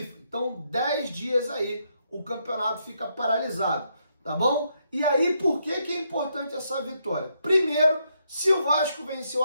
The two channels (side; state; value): both; inverted; correlation -0.77